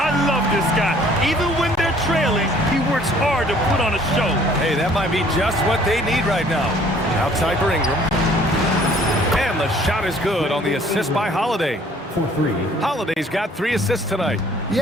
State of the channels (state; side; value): normal; both; correlation 0.57